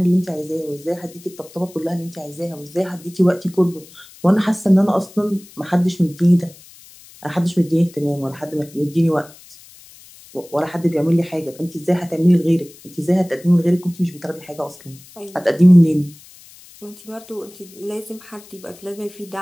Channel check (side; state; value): left; noise; hiss, 22 dB below the sound